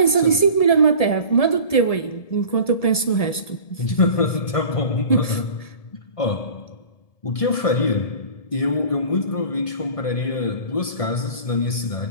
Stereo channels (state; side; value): late; right; 1.7 ms